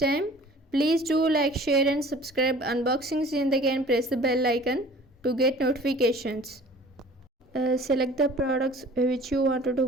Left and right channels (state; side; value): normal; both; correlation 0.47